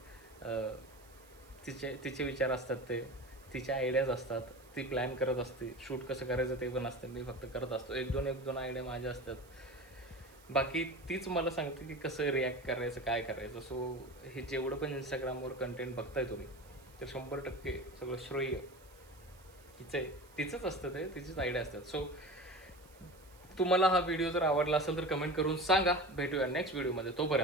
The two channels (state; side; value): noise; right; hiss, 26 dB below the sound